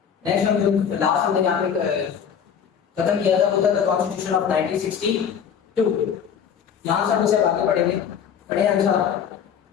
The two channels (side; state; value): right; quieter; 7.8 dB